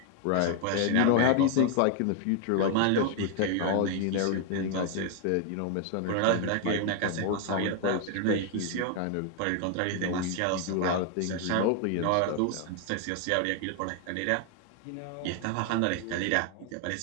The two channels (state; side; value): different; both; correlation 0.00